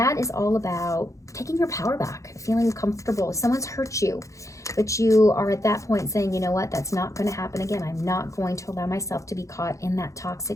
is all about taking your power back, feeling comfortable. Someone's hurt you, but you are at that point saying, you know what, that's not going to happen again. I'm not going to allow myself to be caught in that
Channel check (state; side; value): late; right; 0.15 ms